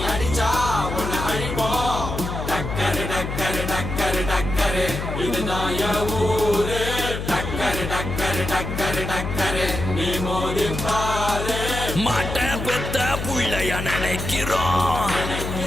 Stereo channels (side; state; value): left; noise; hum, 5 dB below the sound